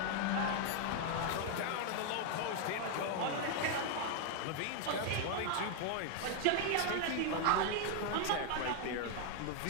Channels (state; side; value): different; both; correlation 0.00